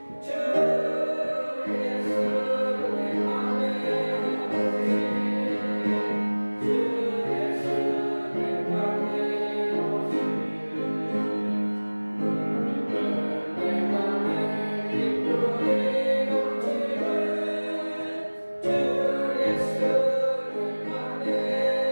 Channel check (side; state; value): both; inverted; correlation -1.00